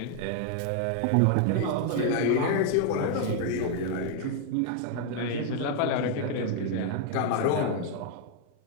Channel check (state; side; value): different; both; correlation 0.00